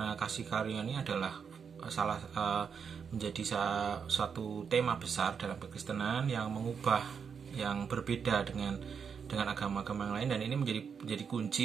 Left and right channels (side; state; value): left; quieter; 6.6 dB